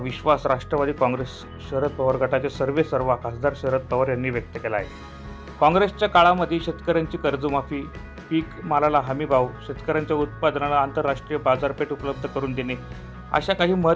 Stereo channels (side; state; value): both; identical; correlation 1.00